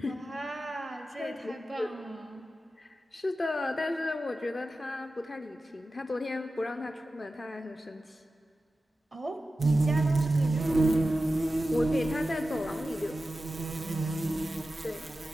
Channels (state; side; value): normal; both; correlation 0.93